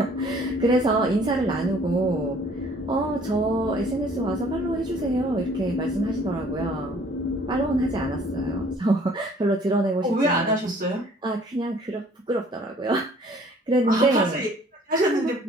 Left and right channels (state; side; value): normal; both; correlation 0.56